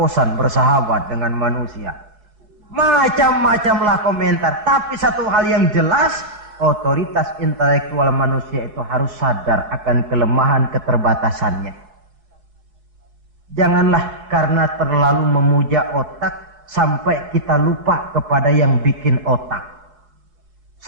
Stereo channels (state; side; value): late; left; 4.7 ms